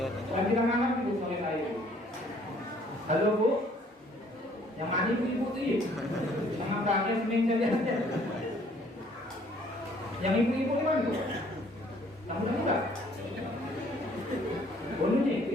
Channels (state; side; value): normal; both; correlation 0.60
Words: Lagi tangan ibu sore saya. Halo bu. Yang mana ibu tuh? Jangan kaget seminggu aja. Yang ibu-ibu mana bu? Kamu enggak? Boleh nih,